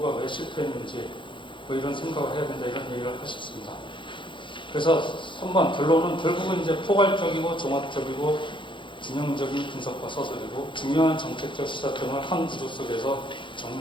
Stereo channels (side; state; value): right; late; 0.24 ms